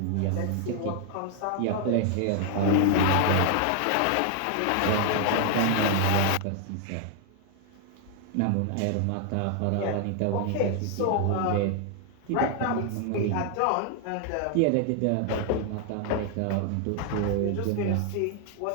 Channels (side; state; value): both; different; correlation 0.00